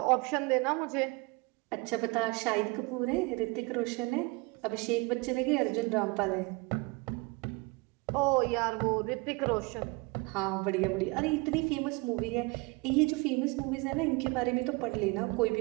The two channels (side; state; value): left; quieter; 26.8 dB